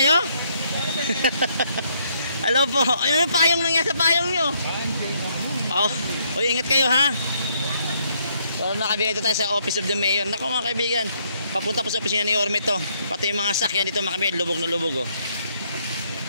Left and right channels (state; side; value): inverted; both; correlation -0.71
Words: kayo? Hello po. Ayun yung payong nangyari sa payong nyo. Oh, ingat kayo ha. So nakabigay tayo sa Office of the Mayor. Naku mga kaibigan, papunta po sa opisina ni Yorme to. Pati yung mga sakyan dito mga kaibigan, lubog na lubog oh.